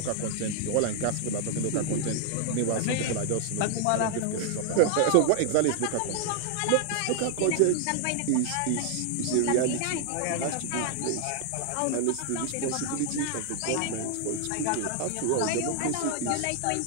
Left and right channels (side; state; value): both; different; correlation 0.00